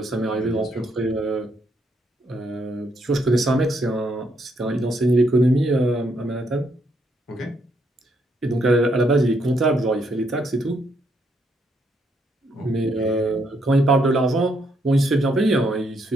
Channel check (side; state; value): both; normal; correlation 0.74